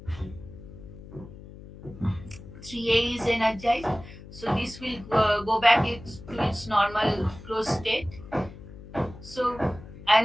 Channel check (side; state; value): left; noise; hum, 16 dB below the sound